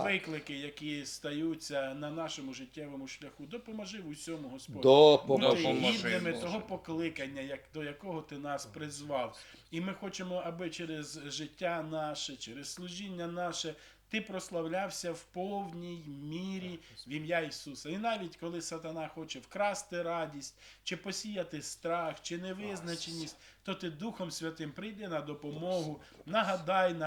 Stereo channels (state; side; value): identical; both; correlation 1.00